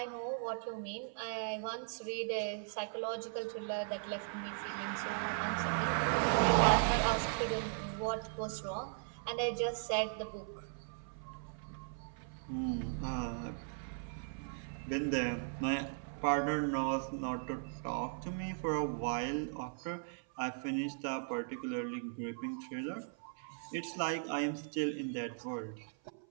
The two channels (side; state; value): left; silent; 52 dB below the other